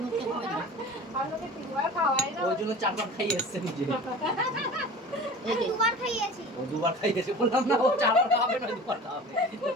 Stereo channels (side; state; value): both; normal; correlation 0.38